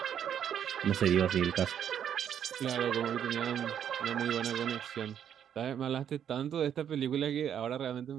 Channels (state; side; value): quieter; left; 9.1 dB